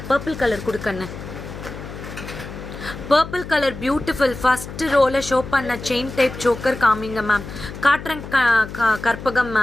பர்பிள் கலர் கொடுக்கண்ணு. Purple colour beautiful. ஃபஸ்ட்டு ரோவில் ஷோ பண்ண செயின் டைப் சோக்கர் காமிங்க மேம். காட்டுறேன் கற்பகம்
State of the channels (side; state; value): left; noise; hum, 11 dB below the sound